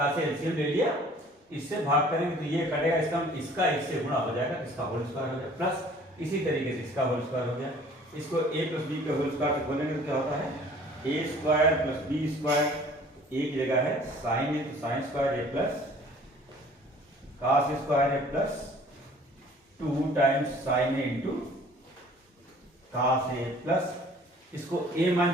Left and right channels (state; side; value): normal; both; correlation 0.52